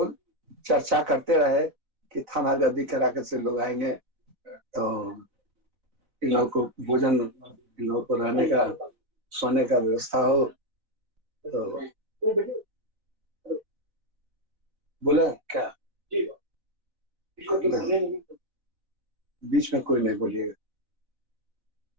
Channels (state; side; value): late; left; 4.0 ms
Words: चर्चा करते रहे कि थाना गद्दी कराकर से लोग आएंगे तो इन लोगों को भोजन, इन लोगों को रहने का, सोने का व्यवस्था हो। तो बोले क्या बीच में कोई नहीं बोलिएगा।